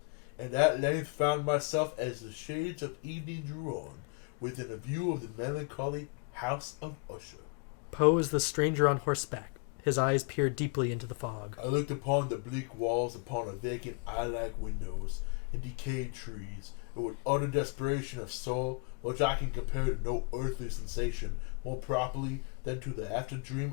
and at length found myself as the shades of evening drew on, within a view of the melancholy House of Usher. Poe is the stranger on horseback. His eyes peer deeply into the fog. I looked upon the bleak walls, upon a vacant eye-like windows, and decayed trees, and with utter desperation of soul, which I can compare to no earthly sensation more properly than to the after-dream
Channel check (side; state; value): right; quieter; 32.2 dB